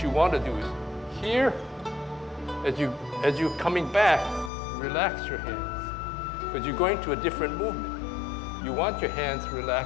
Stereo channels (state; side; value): drops out; right; at 4.5 s